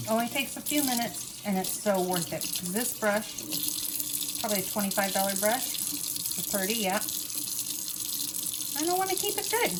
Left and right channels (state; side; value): identical; both; correlation 1.00